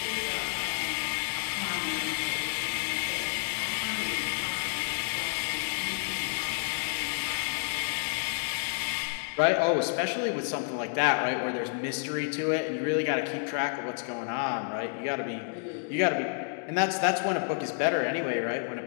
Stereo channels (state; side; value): silent; right; 58 dB below the other